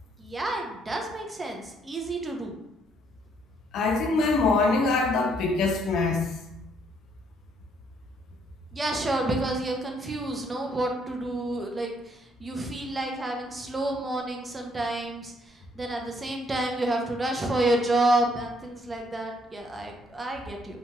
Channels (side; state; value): both; normal; correlation 0.68